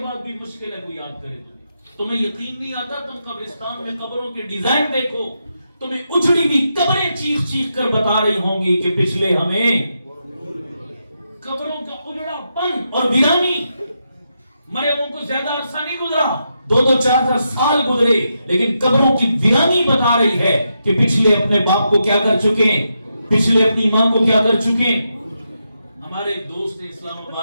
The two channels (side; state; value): both; inverted; correlation -0.84